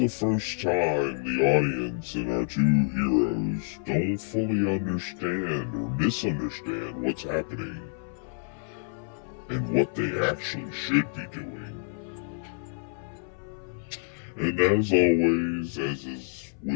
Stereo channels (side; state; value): right; silent; 59 dB below the other